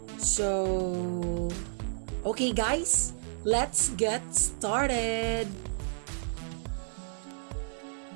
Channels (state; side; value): silent; left; digital silence